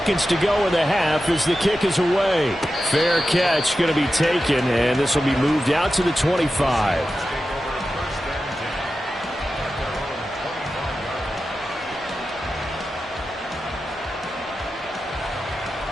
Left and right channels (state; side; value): normal; both; correlation 0.92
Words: to go in the half as the kick is away. Fair catch going to be taken, and this will be moved out to the 25.